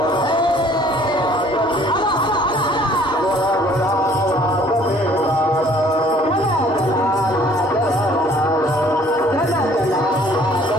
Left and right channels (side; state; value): both; normal; correlation 0.56